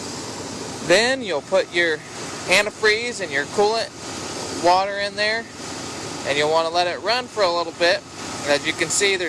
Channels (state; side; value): identical; both; correlation 1.00